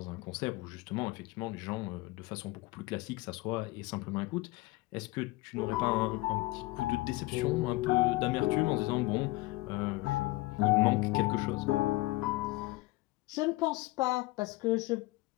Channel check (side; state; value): right; quieter; 20.8 dB